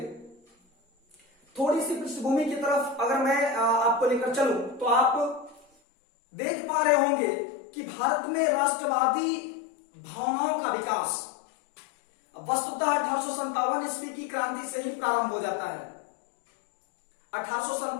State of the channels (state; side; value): drops out; right; at 5.7 s